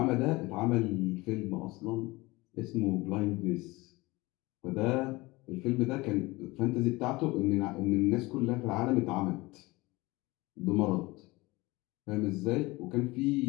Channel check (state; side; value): quieter; right; 21.9 dB